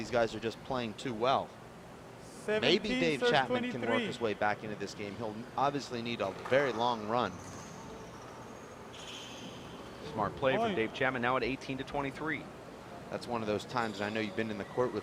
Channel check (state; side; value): identical; both; correlation 1.00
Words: guys are just playing too well. Maybe Dave Chapman can work his way back into this game. He'll obviously need a very long run. Smart play from Dave Chapman, now at 18 to 23. That's one of those times, and I know you've been in the court